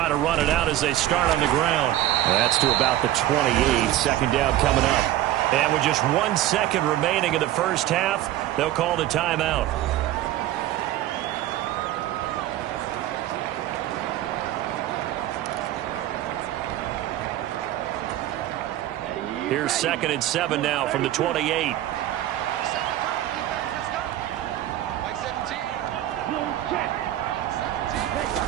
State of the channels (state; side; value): quieter; left; 13.7 dB